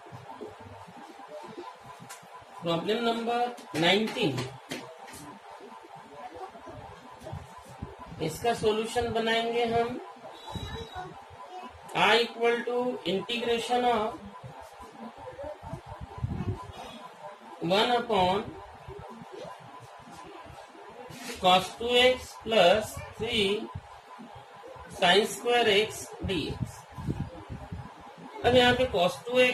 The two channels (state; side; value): identical; both; correlation 1.00